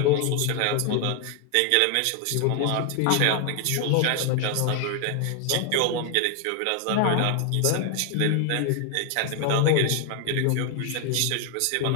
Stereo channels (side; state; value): both; different; correlation 0.00